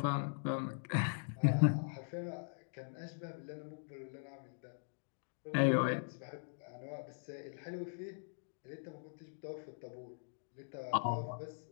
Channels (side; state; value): right; silent; digital silence